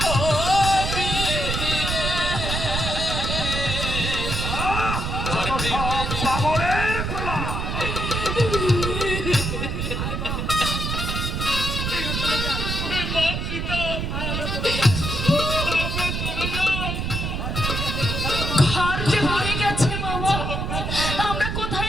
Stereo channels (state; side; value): noise; right; rumble, 2 dB below the sound